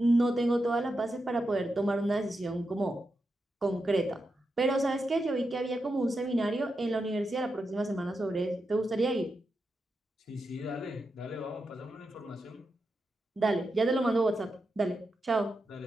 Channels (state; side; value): normal; both; correlation 0.87